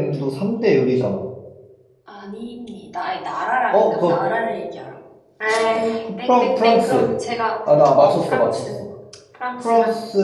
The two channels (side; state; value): both; identical; correlation 1.00